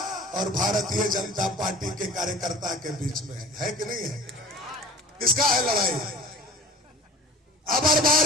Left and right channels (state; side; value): normal; both; correlation 0.44